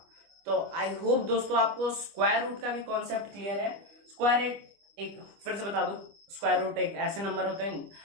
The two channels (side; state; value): left; late; 25 ms